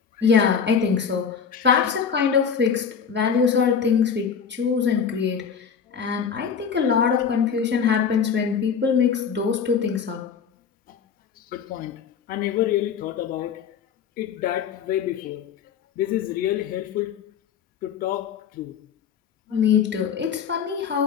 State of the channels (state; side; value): quieter; right; 7.0 dB